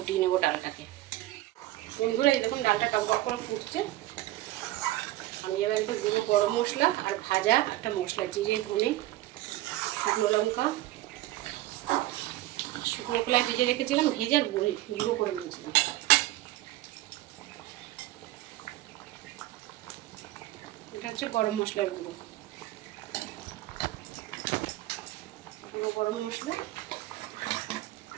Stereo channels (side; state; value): left; quieter; 16.4 dB